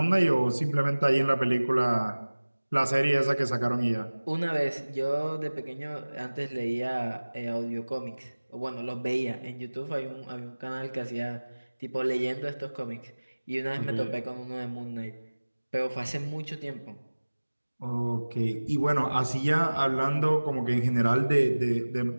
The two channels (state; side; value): inverted; both; correlation -1.00